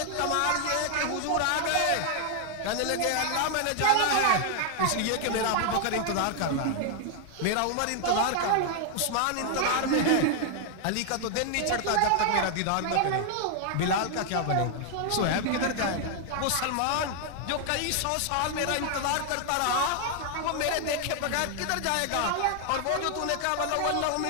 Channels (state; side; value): different; both; correlation 0.00